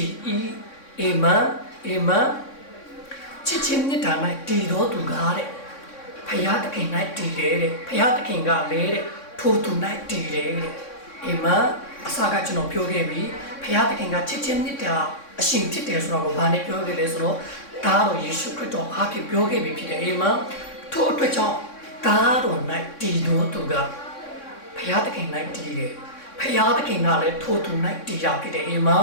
်၏အာမင်အာမင်ချစ်ခြင်းမြတ်တာ၌တည်တော်သူကားတဲ့ဘုရားသခင်၌တည်တယ်တဲ့ဘုရားသခင်ကလည်းတဲ့ထိုသူ၌တည်တယ်တဲ့အာမင်အစကကျွန်တော်ပြောခဲ့ပြီဘုရားသခင်ကချစ်ချင်းမြတ်တာအရှင်ဖြစ်တယ်ဆိုတော့ဘာနဲ့ပြောခဲ့လဲဆိုတော့ဒါတော်ယေရှုခရစ်တော်အားဖြင့်ပြောခဲ့ပြီဖြစ်တယ်အာမင်ထို့အတွက်ကြောင့်ဒါတော်၌တည်တော်သူကဘုရားသခင်၌တည်တယ်ဘုရားသခင်ကလည်းထိုသူ၌တည်ရဖြစ်တယ်အာမင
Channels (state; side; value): late; right; 3.6 ms